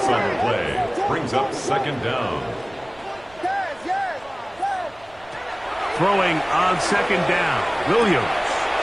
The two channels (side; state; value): right; noise; rumble, 26 dB below the sound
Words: on the play. Brings up second down. Throwing on second down. Williams.